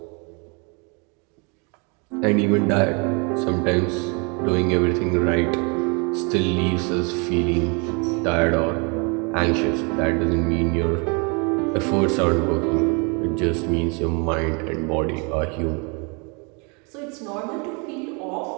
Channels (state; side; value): quieter; left; 32.8 dB